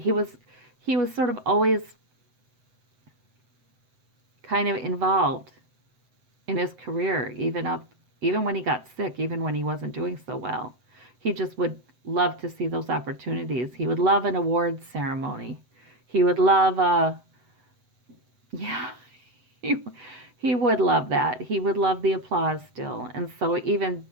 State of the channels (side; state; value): left; late; 7.8 ms